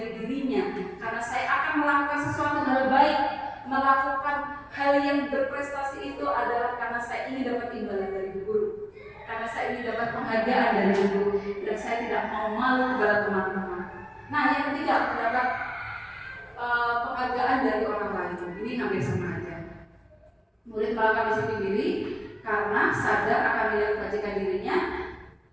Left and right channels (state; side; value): identical; both; correlation 1.00